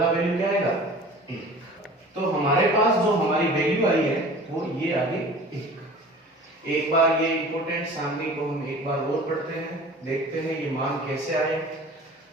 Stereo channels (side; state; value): both; normal; correlation 0.42